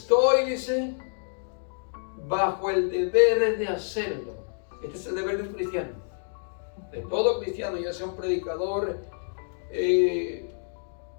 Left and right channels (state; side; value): silent; right; digital silence